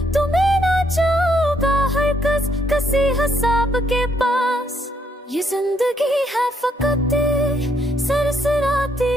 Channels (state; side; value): normal; both; correlation 0.72